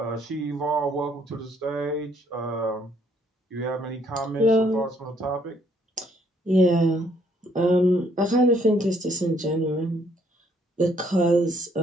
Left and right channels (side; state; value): both; normal; correlation 0.67